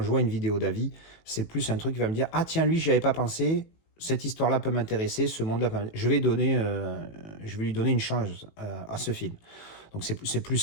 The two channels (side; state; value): right; late; 18 ms